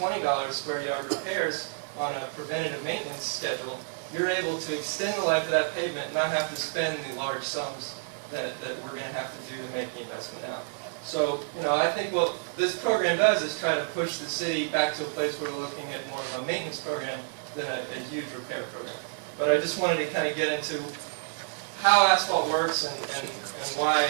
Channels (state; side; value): silent; left; digital silence